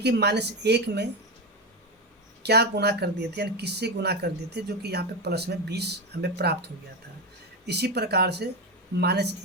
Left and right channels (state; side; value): normal; both; correlation 0.14